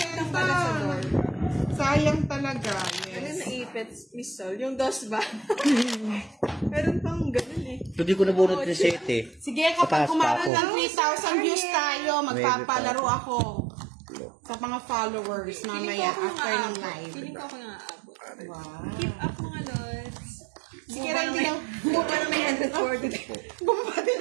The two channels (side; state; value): left; drops out; at 10.5 s